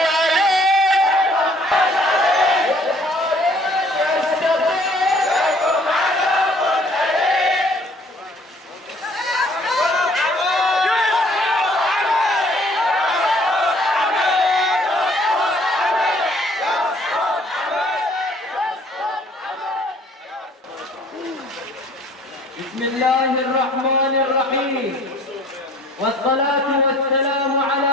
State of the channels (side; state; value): both; normal; correlation 0.57